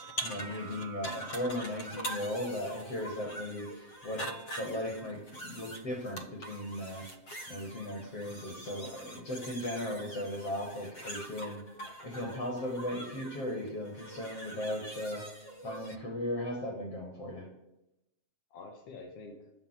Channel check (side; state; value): right; late; 7.6 ms